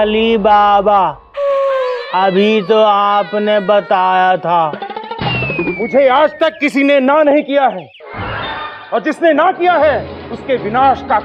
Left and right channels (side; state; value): both; identical; correlation 1.00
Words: बाबा, अभी तो आपने बताया था। मुझे आज तक किसी ने ना नहीं किया है, और जिसने ना किया है उसके विनाश का